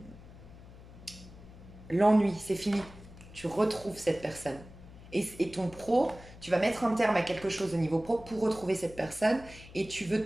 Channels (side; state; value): left; noise; hum, 18 dB below the sound